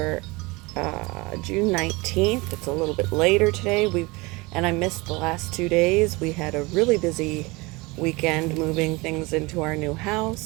June 19th. It's a little bit later today. And I missed the last 2 days. We had a really busy weekend moving things into our new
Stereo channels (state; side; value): quieter; left; 24.4 dB